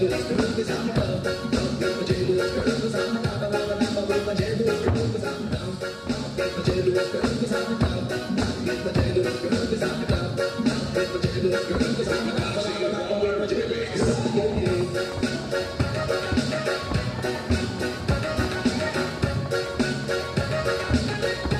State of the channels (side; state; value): both; identical; correlation 1.00